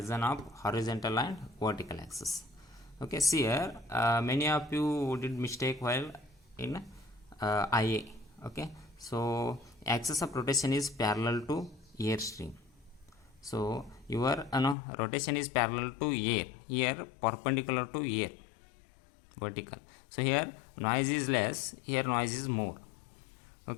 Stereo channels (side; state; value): right; drops out; at 14.8 s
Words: of horizontal and vertical axis. Okay, see here many of you did mistake while in IA. Okay, so axis of rotation is parallel to airstream. So your rotation is parallel to air, here perpendicular to air, vertical. So here noise is less, here noise is more.